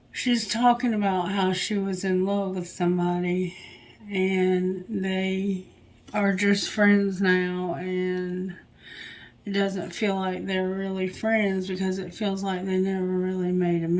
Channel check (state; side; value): identical; both; correlation 1.00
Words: She's talking about how she was in love with somebody and they are just friends now, and it doesn't feel like they're really friends because it feels like they never really made